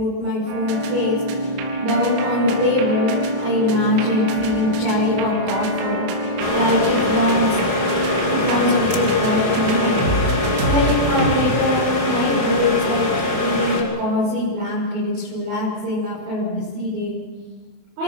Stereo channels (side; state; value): left; late; 31 ms